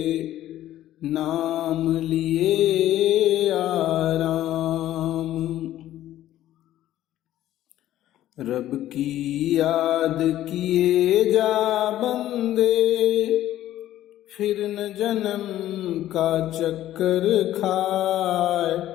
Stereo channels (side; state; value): right; quieter; 13.3 dB